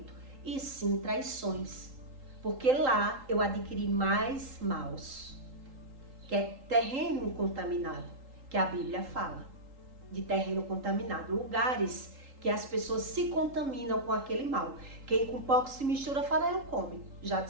e sim traições. Porque lá eu adquiri mais maus, que é terreno contaminado, que a Bíblia fala de terreno contaminado, lugares que as pessoas se contaminam com aquele mal. Quem com pouco se mistura, farelo come, já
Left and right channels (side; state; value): left; late; 3.8 ms